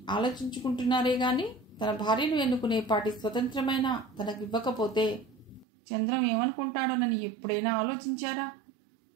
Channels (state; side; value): drops out; left; at 5.7 s